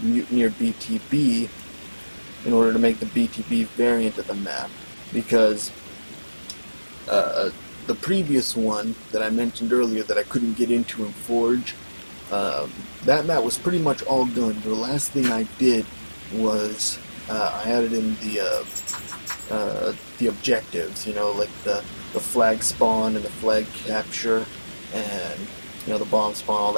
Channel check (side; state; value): both; inverted; correlation -1.00